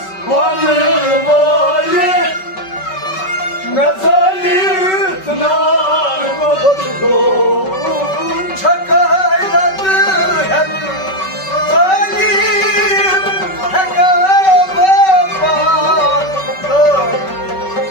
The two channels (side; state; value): right; late; 5.3 ms